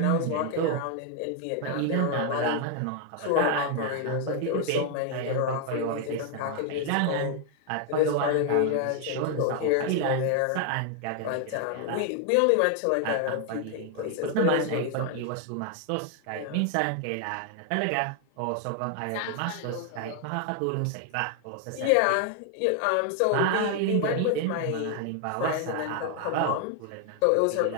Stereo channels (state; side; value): different; both; correlation 0.00